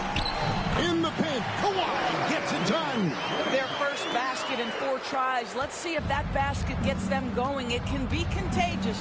In the paint, Kawhi gets it done. Their first basket in 4 tries. Let's see if that basket gets them going. It can be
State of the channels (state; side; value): identical; both; correlation 1.00